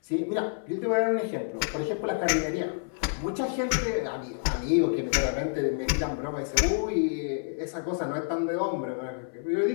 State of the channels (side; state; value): right; silent; 59 dB below the other